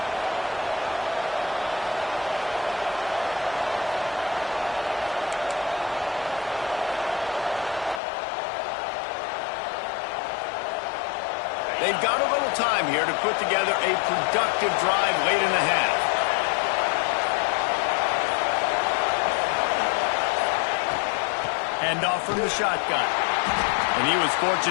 They've got a little time here to put together a productive drive late in the half. Handoff from the shotgun. And he was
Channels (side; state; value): right; drops out; at 8.0 s